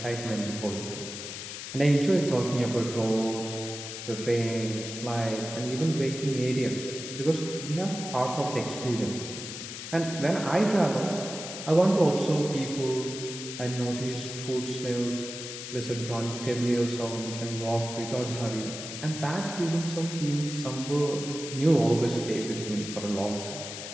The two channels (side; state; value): left; noise; hiss, 8 dB below the sound